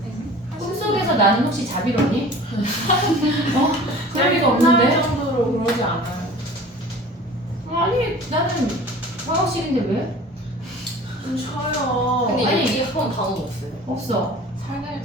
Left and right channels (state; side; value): normal; both; correlation 0.43